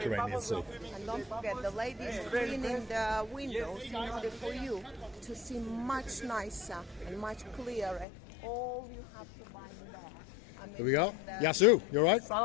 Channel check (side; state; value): right; drops out; at 8.1 s